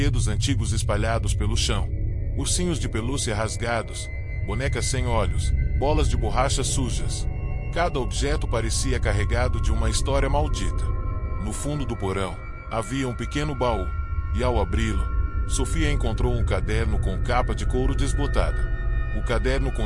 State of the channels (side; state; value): both; identical; correlation 1.00